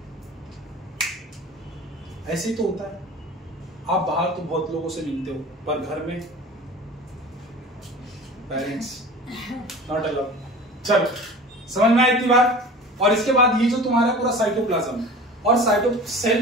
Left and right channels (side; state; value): both; normal; correlation 0.38